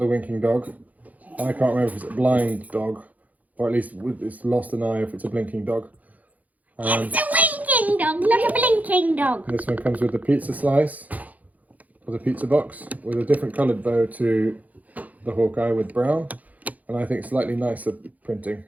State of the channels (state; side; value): late; left; 0.077 ms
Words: winking dog. I can't remember if it's a blind dog, or at least it's lost an eye if it's a blinking dog. It's a winking dog, not a blinking dog. This one comes with the pizza slice, or the pizza box, with a different coloured bow to the Hawkeye with brown, and I think slightly nicer printing.